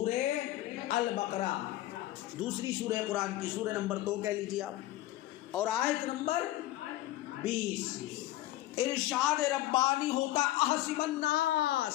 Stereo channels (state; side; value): quieter; right; 15.7 dB